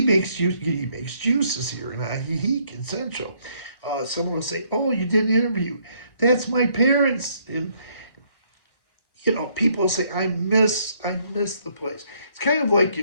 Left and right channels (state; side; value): late; right; 1.1 ms